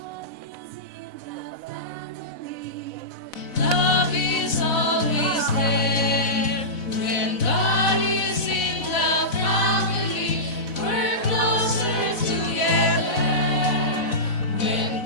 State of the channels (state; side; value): late; right; 4.0 ms